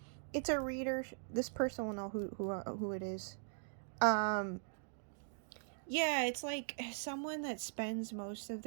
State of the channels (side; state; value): left; silent; digital silence